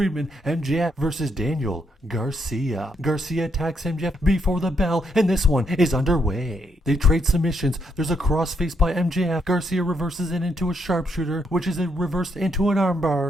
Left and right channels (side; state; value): both; normal; correlation 0.77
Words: MJF versus Daniel Garcia. Garcia attacks MJF before the bell, and this one is underway. They trade submissions. There's a crossface by MJF. Garcia reverses it into a sharpshooter, which is reversed into an